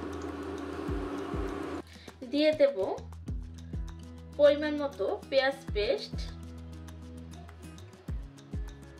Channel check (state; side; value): identical; both; correlation 1.00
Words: দিয়ে দেব পরিমাণ মতো পেঁয়াজ পেস্ট,